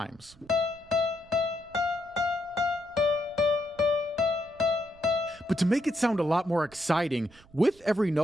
But to make it sound a lot more exciting, with every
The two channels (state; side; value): noise; right; rumble, 26 dB below the sound